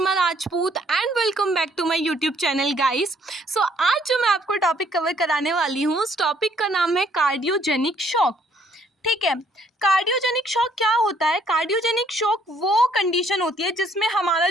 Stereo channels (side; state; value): both; normal; correlation 0.65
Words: Rajput and welcome back to my YouTube channel guys. So आज जो मैं आपको टॉपिक कवर कराने वाली हूँ, उस टॉपिक का नाम है कार्डियोजेनिक शॉक। ठीक है, कार्डियोजेनिक शॉक क्या होता है? कार्डियोजेनिक शॉक वो कंडीशन होती है जिसमें हमारा